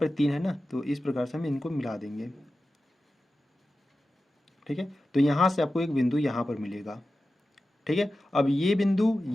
3 है ना, तो इस प्रकार से हम इनको मिला देंगे, ठीक है। तो यहाँ से आपको एक बिंदु यहाँ पर मिलेगा, ठीक है। अब ये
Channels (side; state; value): both; normal; correlation 0.93